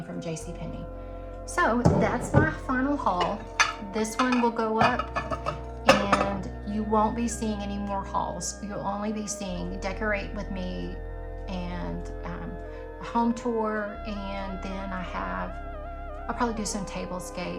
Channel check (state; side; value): identical; both; correlation 1.00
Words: from JCPenney. So that's my final haul. This one will go up, and you won't be seeing any more hauls. You'll only be seeing Decorate with Me and a home tour, and then I'll probably do some